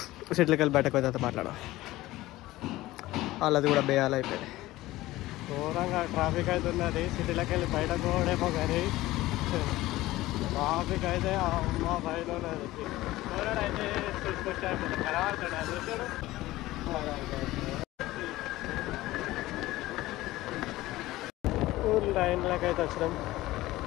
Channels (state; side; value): quieter; right; 17.3 dB